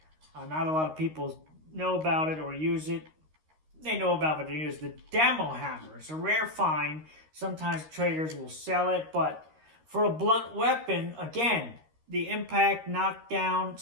Not a lot of people know about it or use it. They know about it, they use the Demo Hammer. It's a rare find. Sometimes traders will sell it, but for a blunt weapon, again, the impact, knockdown,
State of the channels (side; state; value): left; late; 13 ms